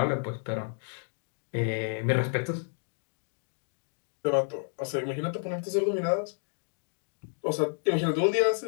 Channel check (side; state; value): right; silent; digital silence